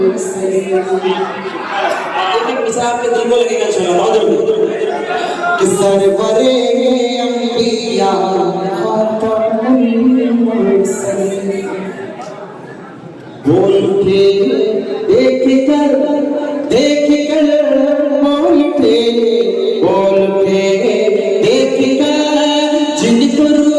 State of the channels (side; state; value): both; identical; correlation 1.00